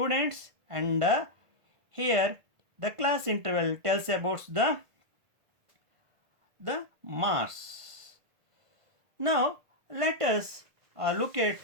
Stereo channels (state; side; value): late; left; 1.5 ms